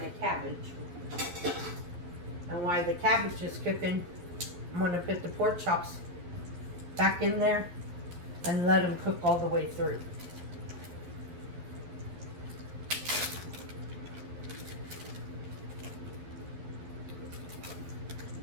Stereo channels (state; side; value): late; left; 11 ms